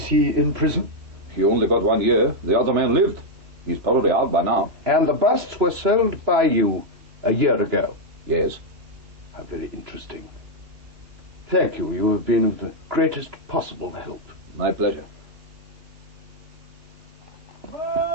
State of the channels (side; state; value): left; late; 3.0 ms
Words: he in prison? He only got 1 year. The other man lived. He's probably out by now. And the busts were sold by you a year ago? Yes. How very interesting. Thank you. You have been of the greatest possible help. My pleasure.